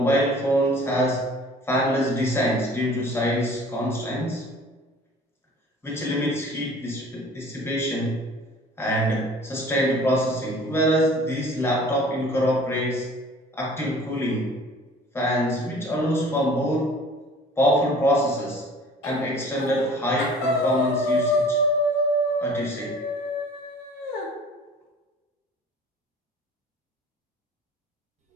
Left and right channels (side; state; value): both; normal; correlation 0.48